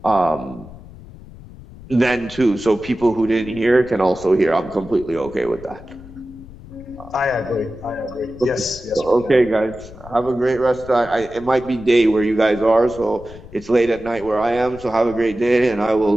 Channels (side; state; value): left; noise; rumble, 18 dB below the sound